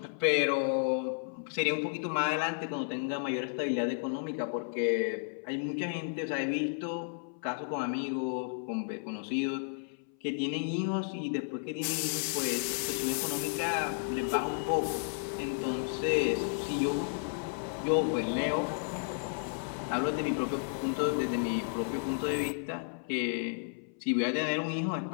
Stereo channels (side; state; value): right; silent; 56 dB below the other